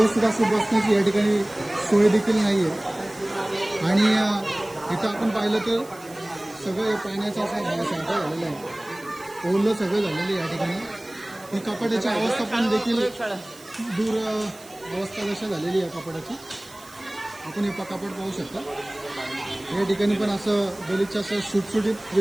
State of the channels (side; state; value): right; noise; hiss, 21 dB below the sound